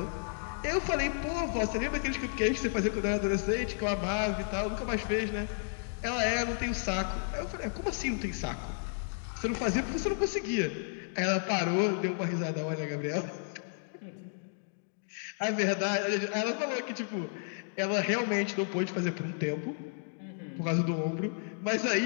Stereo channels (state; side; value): silent; right; digital silence